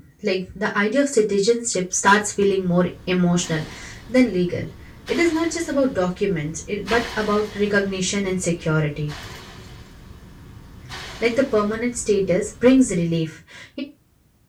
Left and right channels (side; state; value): both; identical; correlation 1.00